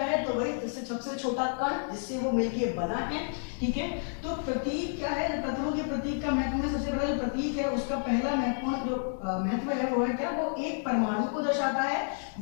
है तो वही जिससे सबसे छोटा कण जिससे वो मिलके बना है, ठीक है। तो प्रतीक क्या है, तत्वों के प्रतीक का महत्व में सबसे बड़ा जो प्रतीक है उसका पहला महत्वपूर्ण जो महत्व है वो है क्या, वो एक परमाणु को दर्शाता है।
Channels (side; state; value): right; silent; digital silence